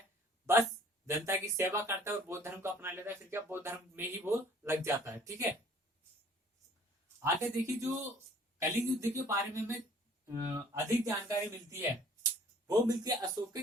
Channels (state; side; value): normal; both; correlation 0.54